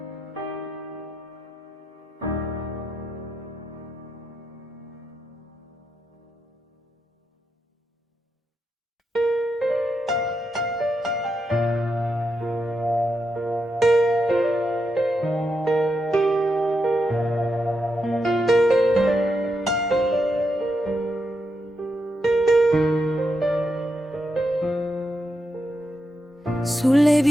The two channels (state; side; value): normal; both; correlation 0.84